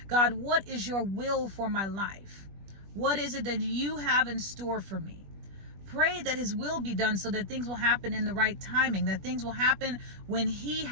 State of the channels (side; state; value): left; late; 20 ms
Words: God, what is your will for my life? What is it that you have in store for me? Pray that his will be done so that things will happen in the right timing, that things will happen when he